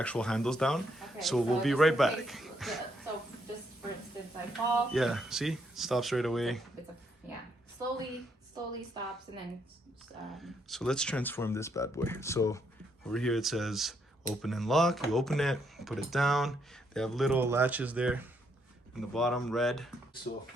handles down. Okay, so we'll be just right in back. case- So just for instance, I fall. Yeah, see? It stops right away. Yeah, slowly stops and then. So let's transform this bad boy. So over here it says open and lock. You open it, put it down. They have little latches there in the bottom, red. So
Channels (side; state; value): both; normal; correlation 0.74